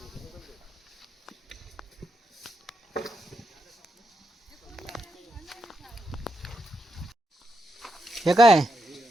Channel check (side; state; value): both; normal; correlation 0.83